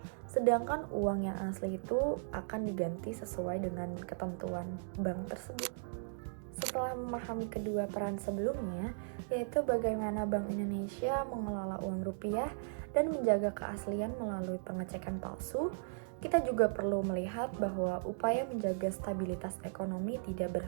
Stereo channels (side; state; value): left; silent; digital silence